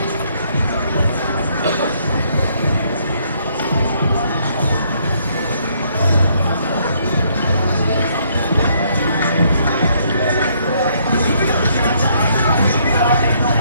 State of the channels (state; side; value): inverted; both; correlation -0.69